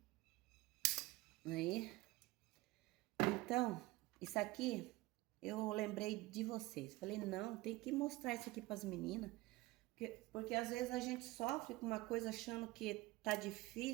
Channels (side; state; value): left; quieter; 19.9 dB